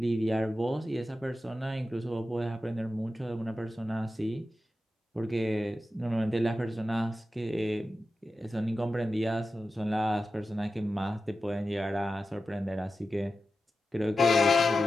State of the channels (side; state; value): both; normal; correlation 0.92